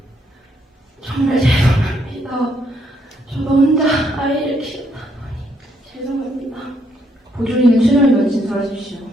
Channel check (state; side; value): normal; both; correlation 0.73